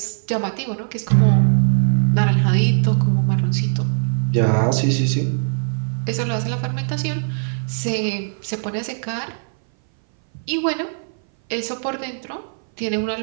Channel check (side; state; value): left; silent; 60 dB below the other